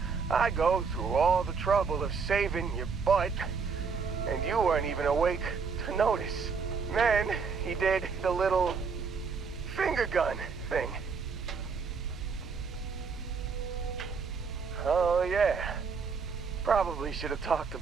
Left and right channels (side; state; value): left; quieter; 5.4 dB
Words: I go through all the trouble of saving your butt, and you weren't even awake to notice. Then he did the little finger gun thing. Oh yeah, probably should have talked